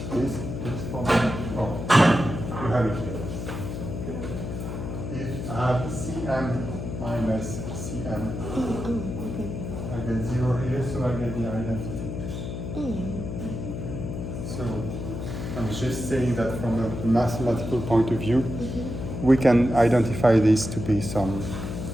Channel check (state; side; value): noise; left; hum, 6 dB below the sound